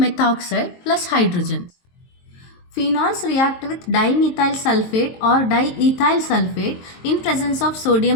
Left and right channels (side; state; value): right; late; 23 ms